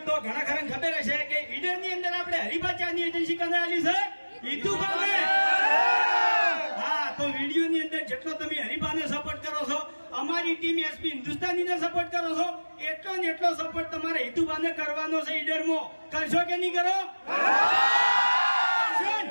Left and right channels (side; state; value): both; inverted; correlation -1.00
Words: તો ઘણા ખરા ખબર હશે કે ઈડર ની અંદર આપણે હરિભાચાની એજન્સી કરાયેલી છે ઈતુભાને. હા, તો વિડીયો ની અંદર જેટલો તમે હરિભાને સપોર્ટ કરો છો, અમારી ટીમ એસપી હિન્દુસ્તાની ને સપોર્ટ કરો છો, એટલો ને એટલો સપોર્ટ તમારે ઈતુભાને કરવાનો છે. ઈડરમાં કરશો કે નહીં કરો?